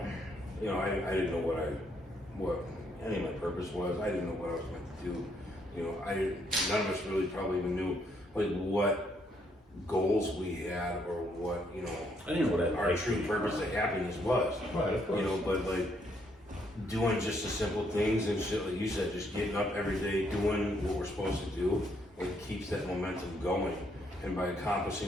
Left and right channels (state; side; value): normal; both; correlation 0.72